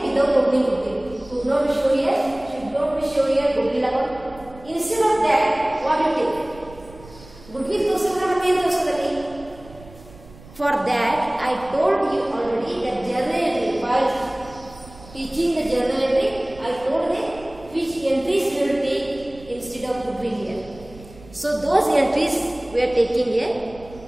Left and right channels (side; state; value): right; noise; rumble, 21 dB below the sound